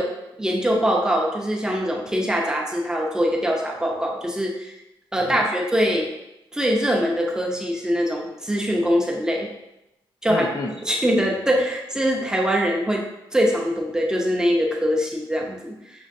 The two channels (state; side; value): normal; both; correlation 0.84